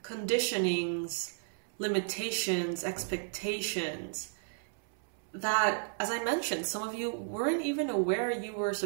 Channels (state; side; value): silent; left; 55 dB below the other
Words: conditionings, limitations, expectations that, as I mentioned, some of you weren't even aware you were